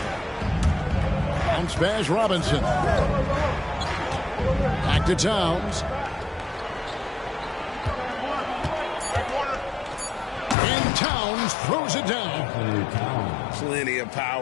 Bounce pass, Robinson. Back to Towns. And Towns throws it down. Plenty of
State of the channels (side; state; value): right; drops out; at 10.6 s